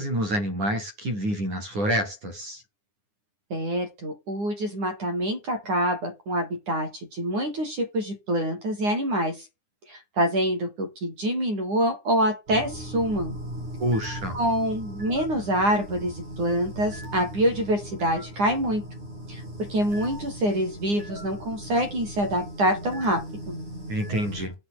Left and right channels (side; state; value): left; late; 9.8 ms